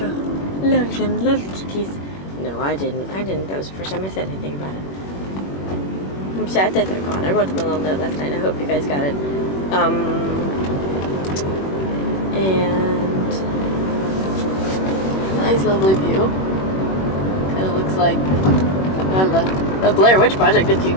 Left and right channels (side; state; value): right; late; 21 ms